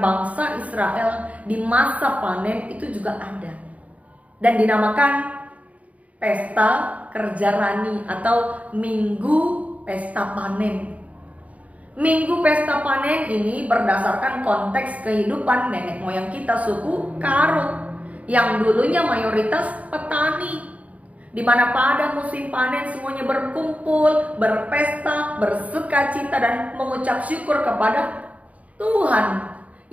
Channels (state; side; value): late; left; 0.068 ms